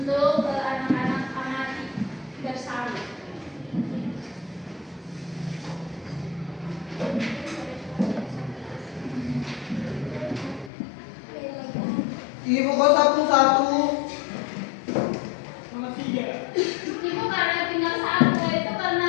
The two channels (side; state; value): right; drops out; at 10.7 s